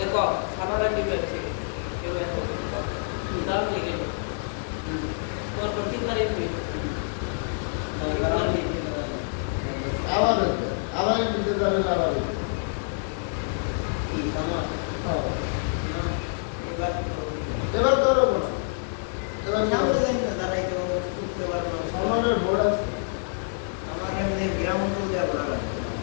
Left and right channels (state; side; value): silent; right; digital silence